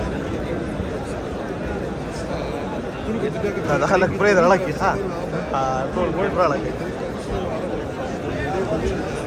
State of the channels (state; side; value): identical; both; correlation 1.00